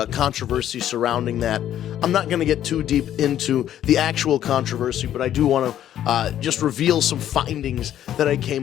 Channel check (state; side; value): quieter; right; 11.3 dB